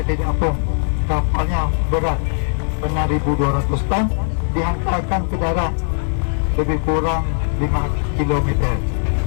Apung. Kapalnya berat benar 1,200 ton, dihantarkan ke darat lebih kurang 5 km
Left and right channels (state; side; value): silent; right; digital silence